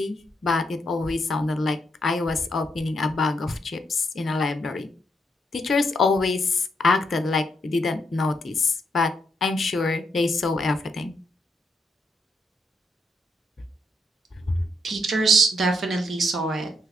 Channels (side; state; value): both; normal; correlation 0.78